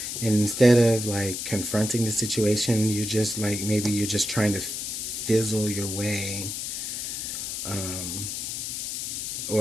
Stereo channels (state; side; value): noise; left; hiss, 4 dB below the sound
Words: And instead of like confronting the situation, you're just like, maybe you're just trying to fizzle your way.